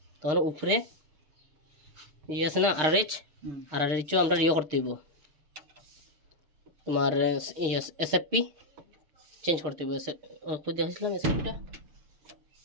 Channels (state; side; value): late; left; 6.5 ms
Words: তখন উপরে ইয়ে আছে না আরআরএইচও আমরা ইয়ে করতে হইব, তোমার এসএফপি চেঞ্জ করতে হইব। খুঁজে দেখছিলাম এসএফপিটা,